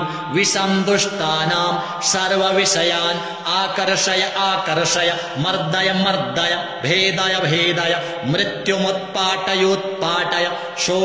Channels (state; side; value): identical; both; correlation 1.00